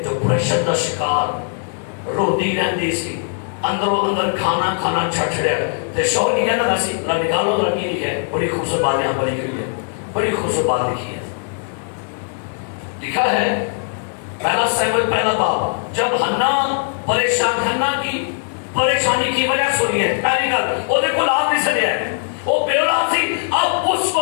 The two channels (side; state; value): right; silent; digital silence